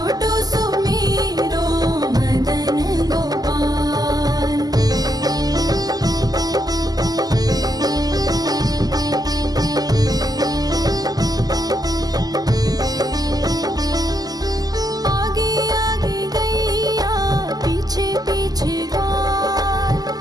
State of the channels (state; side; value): late; left; 0.18 ms